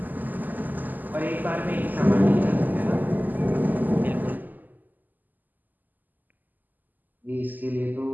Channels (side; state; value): left; late; 0.085 ms